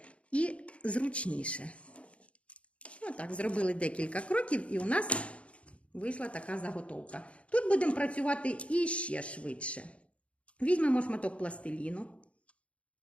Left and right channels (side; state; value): right; late; 0.062 ms